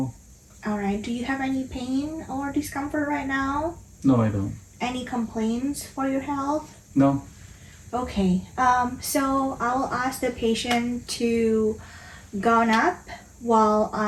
Alright, do you have any pain or discomfort right now? No, I don't. Any complaints for your health? No? Okay, so I will ask the patient to gown up while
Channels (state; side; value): identical; both; correlation 1.00